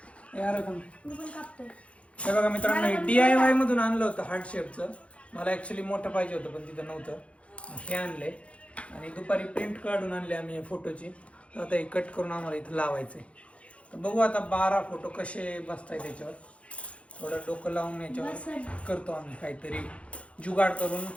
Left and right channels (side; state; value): right; late; 0.062 ms